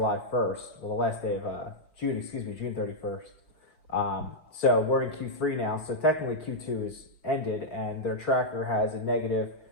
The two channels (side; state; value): right; late; 6.2 ms